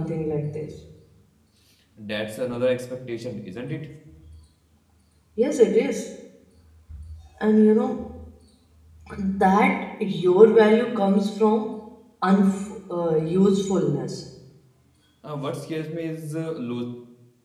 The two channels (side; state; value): both; identical; correlation 1.00